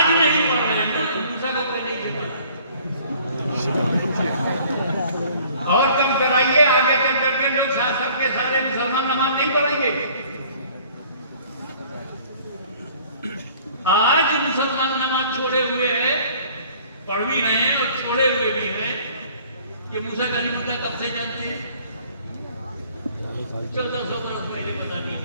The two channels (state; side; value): inverted; both; correlation -0.54